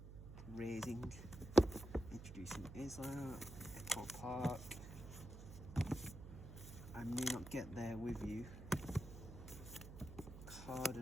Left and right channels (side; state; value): right; noise; hum, 12 dB below the sound